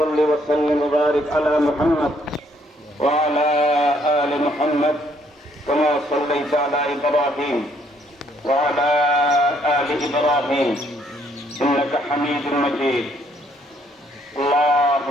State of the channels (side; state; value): both; normal; correlation 0.68